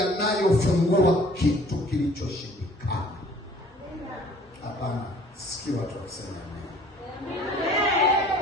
kitu kilichoshindikana. Hapana, sikia watu wakisema amen.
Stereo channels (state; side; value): normal; both; correlation 0.53